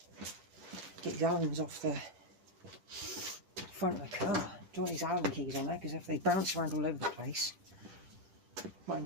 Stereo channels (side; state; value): left; late; 10 ms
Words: Get these Allen's off the front of the car. Don't want these Allen keys on there, because if they bounce around all over the place, might